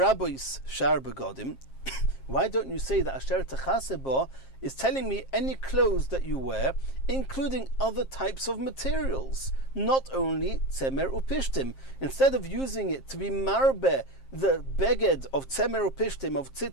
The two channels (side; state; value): right; late; 7.5 ms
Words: don't you say that asher techasebo is telling me any clothes that you wear, including other types of materials, not only tzemer upishtim? Instead of using it to be marbe the beged of tzemer upishtim, of